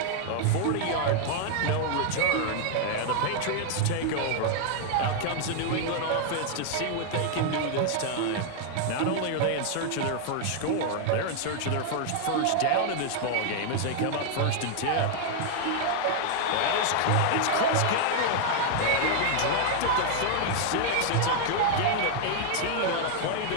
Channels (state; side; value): different; both; correlation 0.00